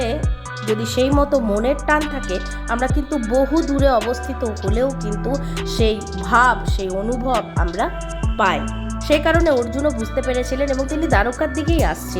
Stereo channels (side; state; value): both; identical; correlation 1.00